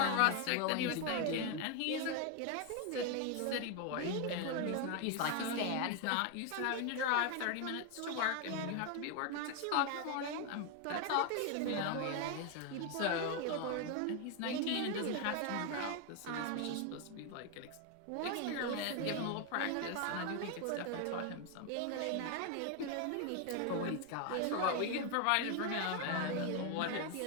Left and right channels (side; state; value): both; different; correlation 0.01